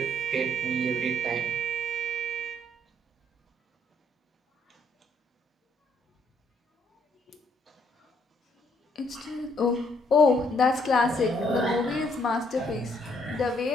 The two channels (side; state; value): both; normal; correlation 0.68